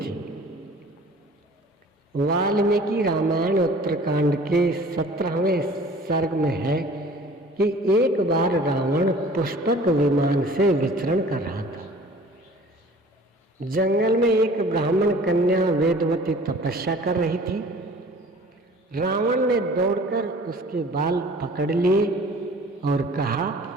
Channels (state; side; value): normal; both; correlation 0.47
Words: वाल्मीकि रामायण उत्तरकांड के 17वें सर्ग में है कि एक बार रावण पुष्पक विमान से विचरण कर रहा था। जंगल में एक ब्राह्मण कन्या वेदवती तपस्या कर रही थी। रावण ने दौड़कर उसके बाल पकड़ लिए और कहा,